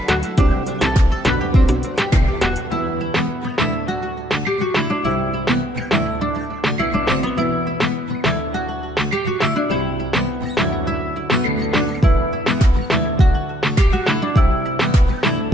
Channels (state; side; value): normal; both; correlation 0.66